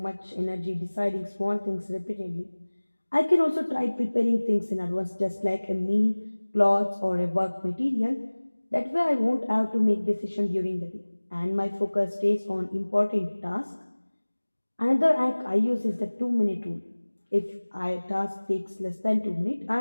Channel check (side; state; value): both; inverted; correlation -1.00